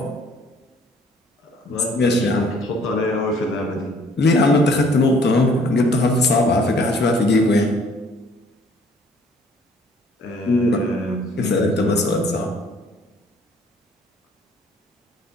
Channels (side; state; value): both; normal; correlation 0.59